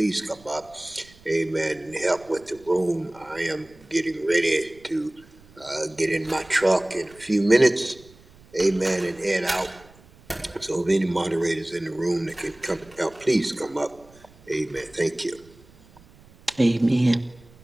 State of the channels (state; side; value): noise; right; rumble, 26 dB below the sound